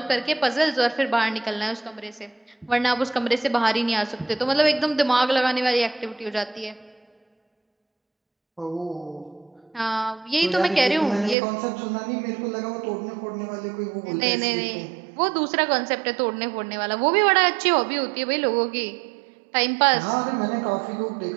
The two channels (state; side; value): drops out; left; at 11.4 s